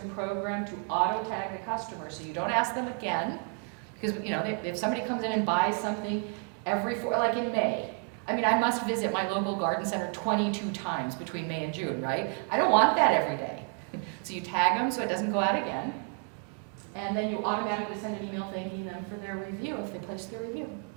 programmed to auto-tag the customer, so you don't ask them again. Because if somebody comes in and buys something like in May, I must visit my local garden center 22 times between May and June, right? I don't want that every day. So you tag them so it doesn't go out again. And then you automatically send an email thanking them for their review if they placed their review.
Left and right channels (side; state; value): left; quieter; 35.5 dB